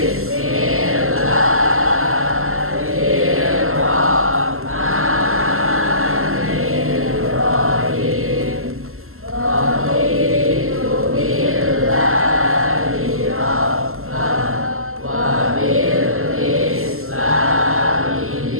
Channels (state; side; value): late; left; 0.62 ms